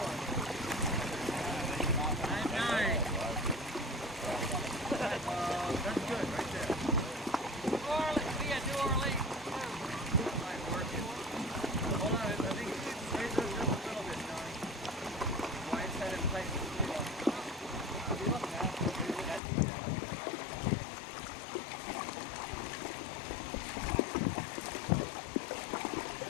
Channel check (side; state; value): right; drops out; at 19.4 s